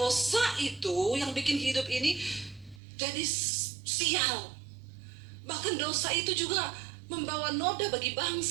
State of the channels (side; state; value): left; drops out; at 2.8 s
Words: itu yang bikin hidup ini jadi sial. Bahkan dosa itu juga membawa noda bagi